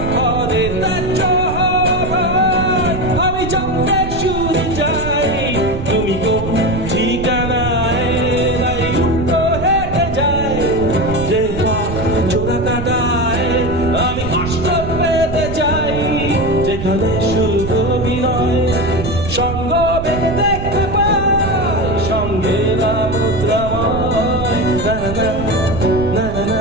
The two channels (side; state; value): right; noise; rumble, 6 dB below the sound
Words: আমি জানতে শুরু চাই তুমি কোন ঠিকানায় নাই উল্টো হেঁটে যায় যে জোড়া কাটায় আমি কষ্ট পেতে চাই যেখানে শুধু অভিনয় সঙ্গ বেঁধে দেখতে পাই সঙ্গে মুদ্রাময় না না না